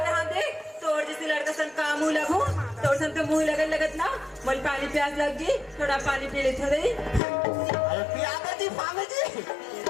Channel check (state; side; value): drops out; right; at 7.2 s